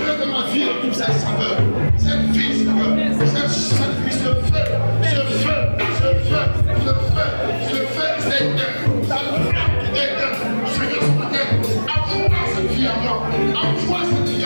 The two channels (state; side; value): inverted; both; correlation -1.00